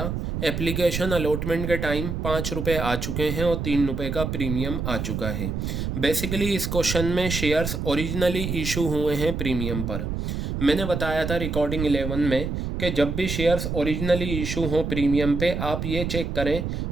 एप्लीकेशन अलॉटमेंट के टाइम 5 रुपये आ चुके हैं और 3 रुपये का प्रीमियम आ चुका है। बेसिकली इस क्वेश्चन में शेयर्स ओरिजिनली इशू हुए हैं प्रीमियम पर। मैंने बताया था रिकॉर्डिंग 11 में कि जब भी शेयर्स ओरिजिनली इशू हों प्रीमियम पे, आप ये चेक करें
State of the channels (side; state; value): right; noise; rumble, 3 dB below the sound